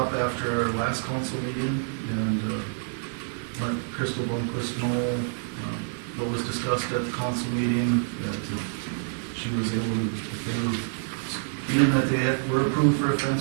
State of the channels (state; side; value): silent; left; digital silence